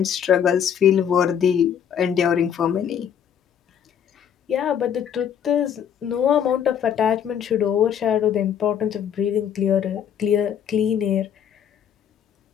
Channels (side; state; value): right; quieter; 8.7 dB